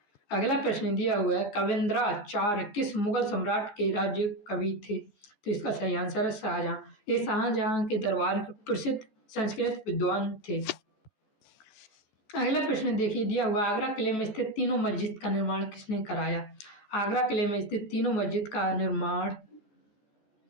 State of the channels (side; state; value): right; late; 14 ms